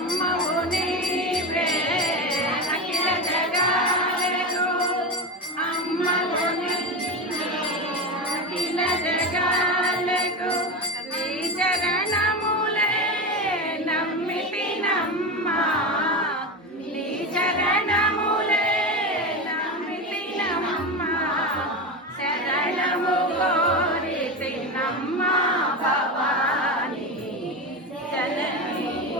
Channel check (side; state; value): both; normal; correlation 0.19